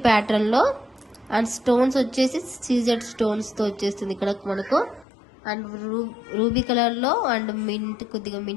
ప్యాటర్న్ లో అండ్ స్టోన్స్ వచ్చేసి సీజెడ్ స్టోన్స్ తో వచ్చేస్తుంది ఇక్కడ మనకు. అండ్ రూబీ కలర్ లో అండ్ మింట్, కొద్దిగా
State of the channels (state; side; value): drops out; right; at 5.1 s